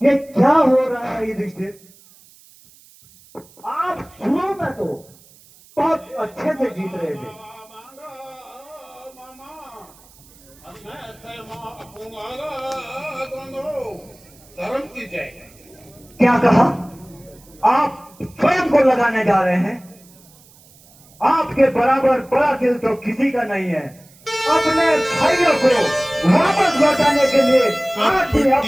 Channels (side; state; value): right; noise; hiss, 26 dB below the sound